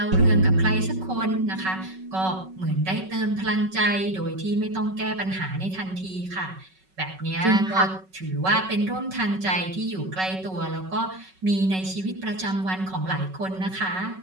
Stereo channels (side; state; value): left; late; 5.3 ms